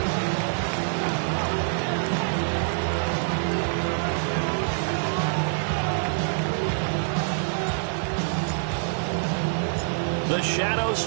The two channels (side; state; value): left; silent; digital silence